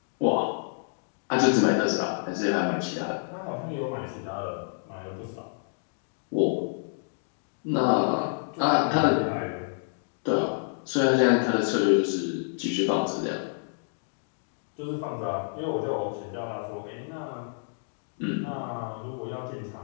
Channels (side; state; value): right; silent; digital silence